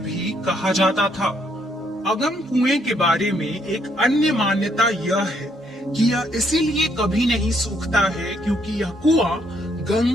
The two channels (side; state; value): both; normal; correlation 0.72